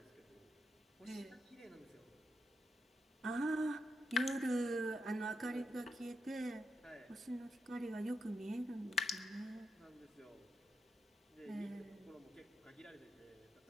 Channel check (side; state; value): both; normal; correlation 0.82